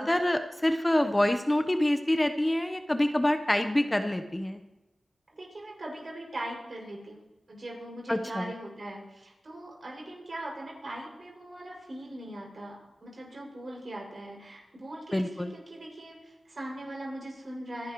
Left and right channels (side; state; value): both; normal; correlation 0.98